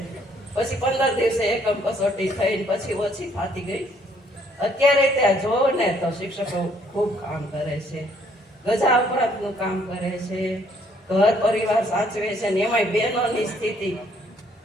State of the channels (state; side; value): normal; both; correlation 0.65